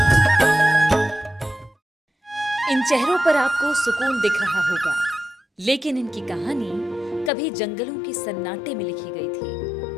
इन चेहरों पर आपको सुकून दिख रहा होगा, लेकिन इनकी कहानी कभी जंगलों के सन्नाटे में लिखी गई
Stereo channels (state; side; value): drops out; right; at 7.3 s